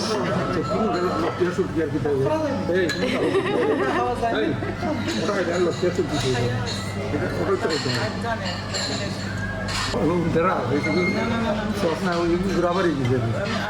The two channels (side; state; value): both; identical; correlation 1.00